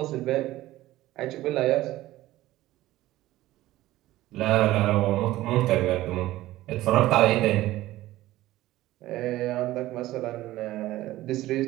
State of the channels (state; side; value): quieter; left; 16.1 dB